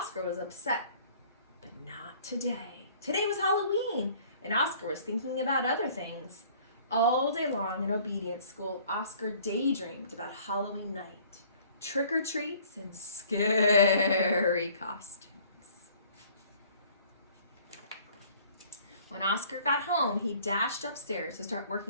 was upset, but not today. Today was Halloween, and Oscar was thinking about other things. All day long in obedience school, Oscar daydreamed about Halloween night, trick-or-treats, and scary costumes. When Oscar got home, he dashed upstairs to start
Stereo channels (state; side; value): inverted; both; correlation -0.55